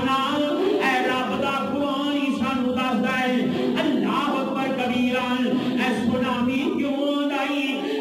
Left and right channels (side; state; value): both; identical; correlation 1.00